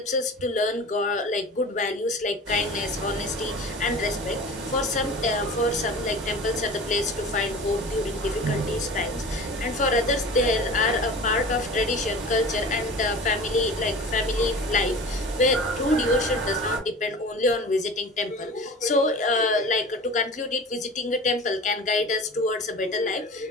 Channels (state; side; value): normal; both; correlation 0.37